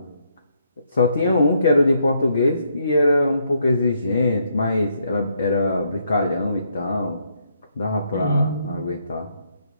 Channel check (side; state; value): both; inverted; correlation -0.74